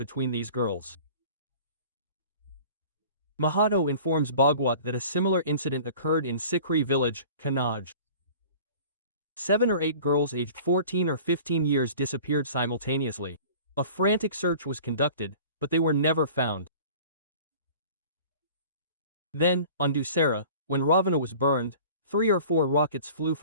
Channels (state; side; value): inverted; both; correlation -0.44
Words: these girls. Mahato informs Bhagwat that a similar incident occurred in Sikri village, Kannauj. 7 or 8 girls aged 14 or 15 years disappeared simultaneously. A frantic search was conducted, but they were never found. Then, on Dussehra, when Ravana was burned, 3 or 4 rockets flew